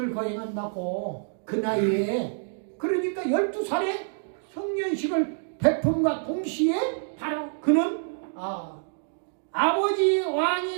거행한다고 그 나이에. 그러니까 12살에 성년식을 베품과 동시에 바로 그는 아버지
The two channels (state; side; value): silent; left; digital silence